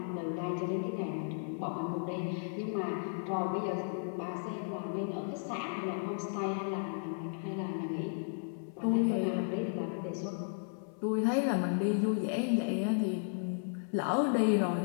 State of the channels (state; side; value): silent; right; 55 dB below the other